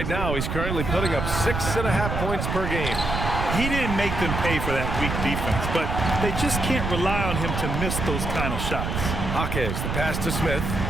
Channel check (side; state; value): right; noise; rumble, 2 dB below the sound